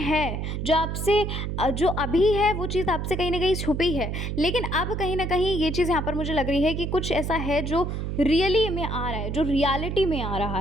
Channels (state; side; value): noise; right; hum, 3 dB below the sound